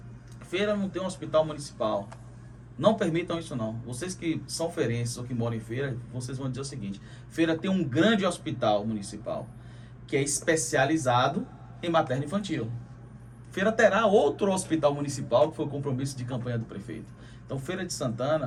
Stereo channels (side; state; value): both; identical; correlation 1.00